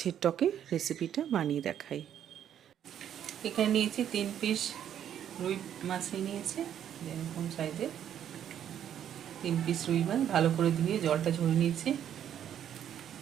টকের রেসিপিটা বানিয়ে দেখাই। এখানে নিয়েছি 3 পিস রুই মাছ নিয়েছি, এরকম সাইজের 3 পিস রুই মাছ ভালো করে ধুয়ে জলটা ঝরিয়ে নিয়েছি।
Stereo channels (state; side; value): quieter; left; 9.9 dB